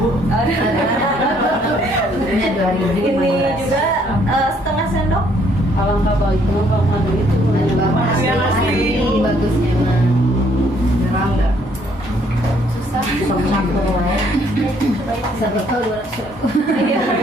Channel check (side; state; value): both; normal; correlation 0.66